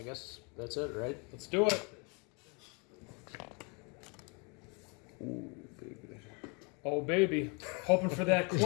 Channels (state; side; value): quieter; right; 31.9 dB